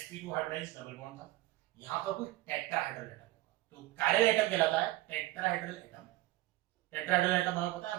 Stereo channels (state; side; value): quieter; left; 18.0 dB